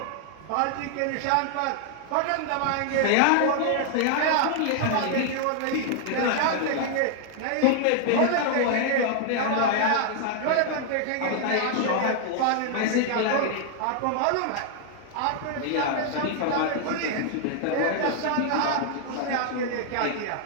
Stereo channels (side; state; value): both; different; correlation 0.00